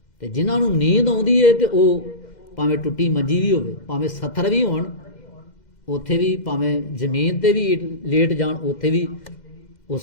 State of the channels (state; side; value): late; right; 2.1 ms